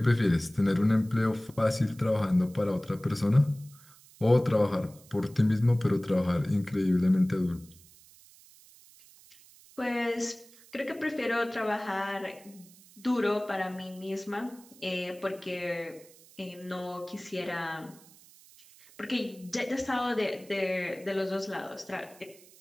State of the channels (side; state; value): right; noise; hiss, 24 dB below the sound